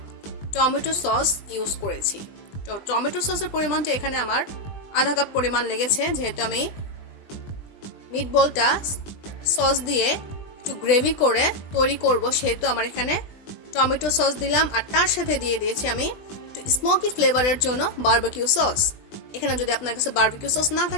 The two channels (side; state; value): right; late; 20 ms